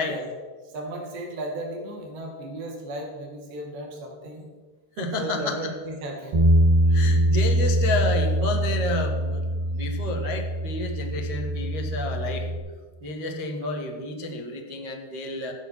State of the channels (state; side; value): late; left; 13 ms